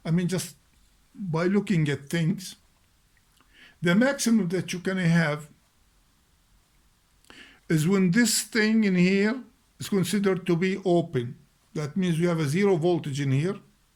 I mean, just by looking at things, the maximum that you can have is when this thing in here is considered to be open. That means you have a 0 voltage in here,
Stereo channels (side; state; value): both; identical; correlation 1.00